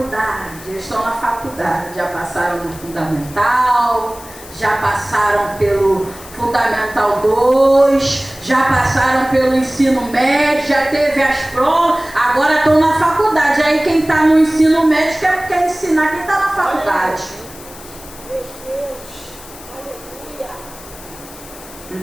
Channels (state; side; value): noise; left; hiss, 18 dB below the sound